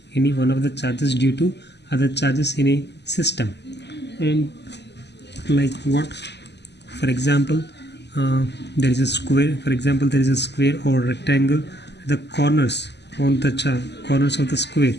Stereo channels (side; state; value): right; late; 0.50 ms